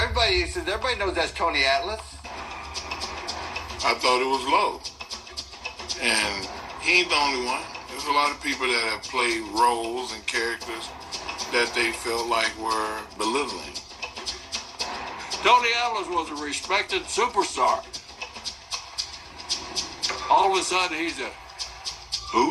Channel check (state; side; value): identical; both; correlation 1.00